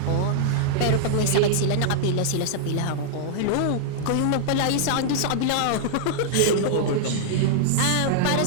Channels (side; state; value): both; different; correlation -0.01